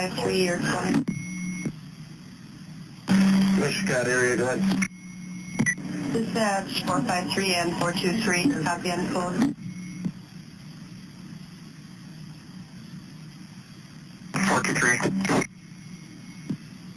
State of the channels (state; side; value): identical; both; correlation 1.00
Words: you're calling. Scott area, go ahead. Dispatch 453 and 423, copy and code. 423.